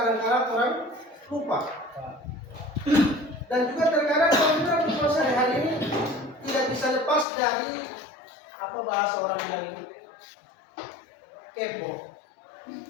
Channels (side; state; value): right; drops out; at 7.2 s